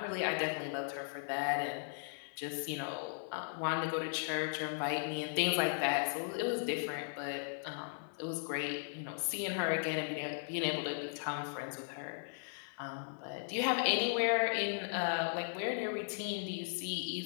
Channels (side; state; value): right; silent; digital silence